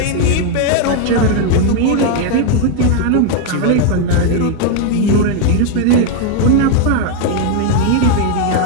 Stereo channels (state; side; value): different; both; correlation 0.01